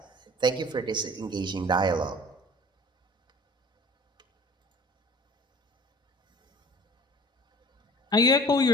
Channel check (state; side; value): normal; both; correlation 0.46